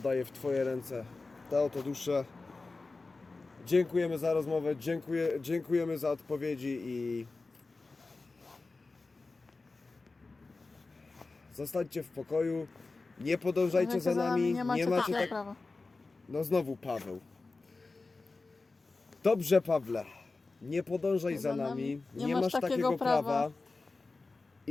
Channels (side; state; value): right; quieter; 3.6 dB